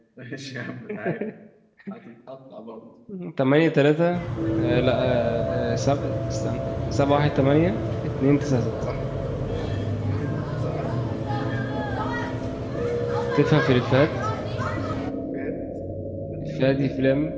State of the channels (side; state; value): both; identical; correlation 1.00